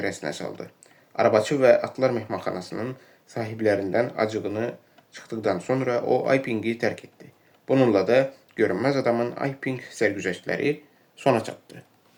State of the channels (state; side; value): identical; both; correlation 1.00